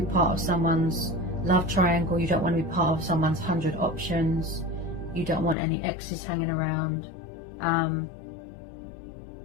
part of someone's love triangle, you don't want to be part of someone's 100 options, you don't want any exes hanging around.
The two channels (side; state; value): right; drops out; at 5.6 s